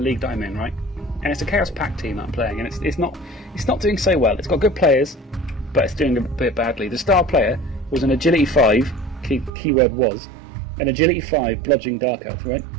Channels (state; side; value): drops out; left; at 9.5 s